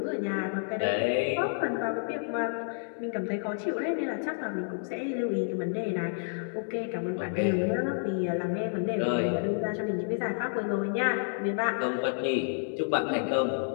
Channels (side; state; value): right; silent; digital silence